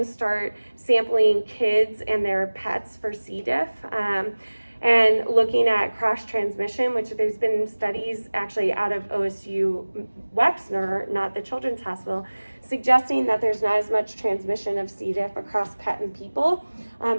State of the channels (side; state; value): both; inverted; correlation -1.00